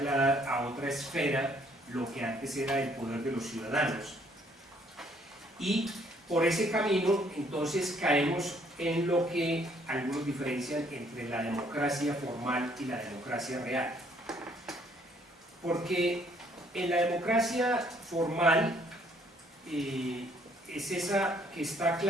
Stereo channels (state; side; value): normal; both; correlation 0.65